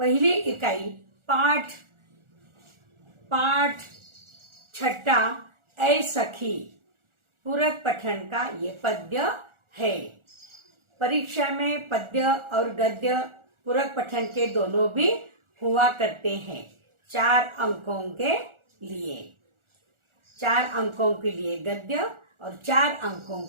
इकाई पाठ 6 ऐ सखी, पूरक पठन का ये पद्य है। परीक्षा में पद्य और गद्य पूरक पठन के दोनों भी हुआ करते हैं। 4 अंकों के लिए, 4 अंकों के लिए गद्य और 4 अंकों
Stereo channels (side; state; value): left; late; 1.4 ms